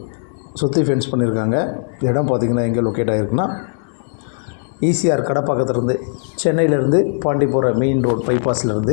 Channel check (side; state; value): right; silent; 59 dB below the other